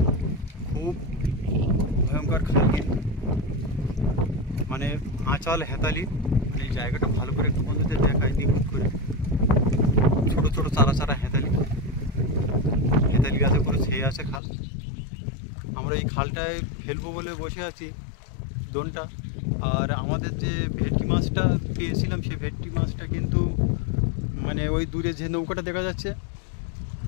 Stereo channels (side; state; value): right; drops out; at 14.4 s